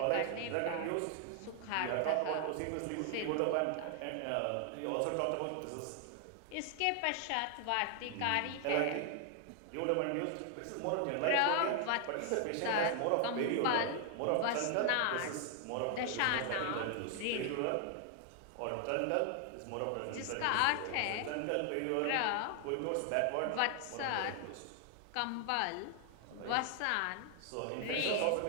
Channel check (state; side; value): different; both; correlation 0.00